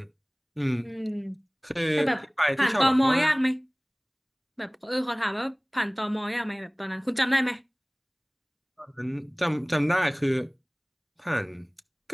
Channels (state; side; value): identical; both; correlation 1.00